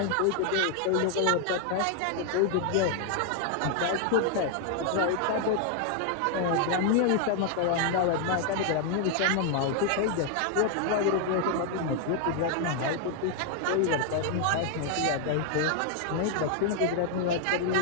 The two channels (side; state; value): both; different; correlation 0.00